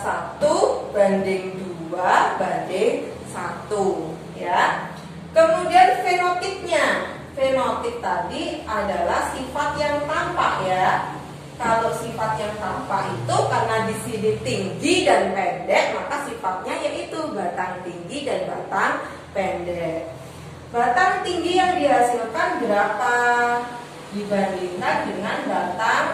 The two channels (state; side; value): identical; both; correlation 1.00